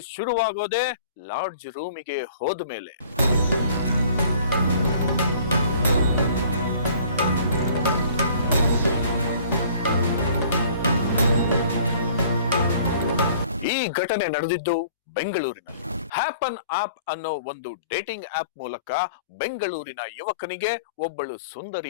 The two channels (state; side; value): inverted; both; correlation -0.52